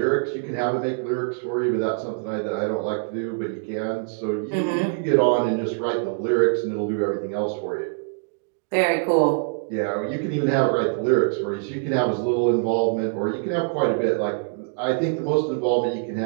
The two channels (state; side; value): silent; left; digital silence